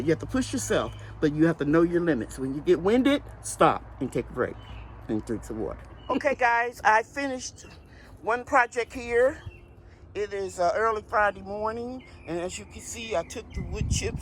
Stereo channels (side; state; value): both; identical; correlation 1.00